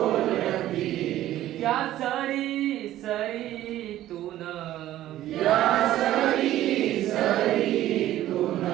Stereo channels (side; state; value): left; quieter; 13.8 dB